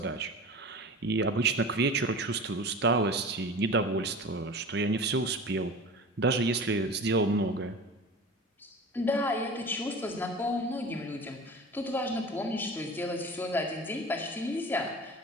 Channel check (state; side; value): normal; both; correlation 0.35